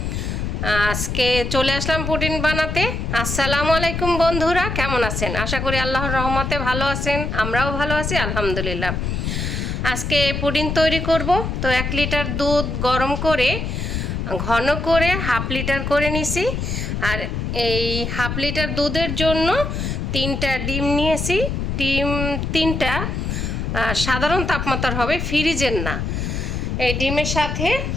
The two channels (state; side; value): noise; left; rumble, 2 dB below the sound